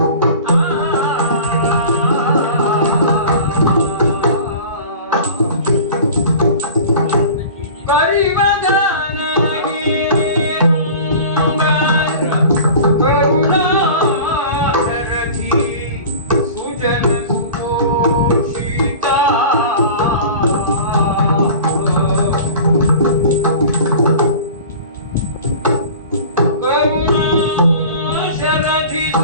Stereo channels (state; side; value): inverted; both; correlation -0.39